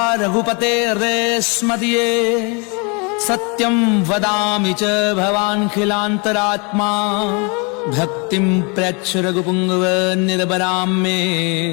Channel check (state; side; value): quieter; right; 32.6 dB